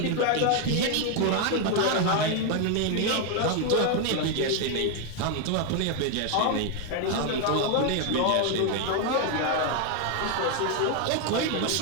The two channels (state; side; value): different; both; correlation 0.01